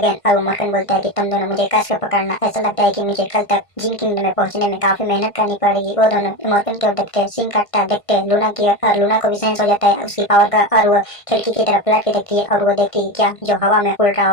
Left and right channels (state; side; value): late; right; 1.5 ms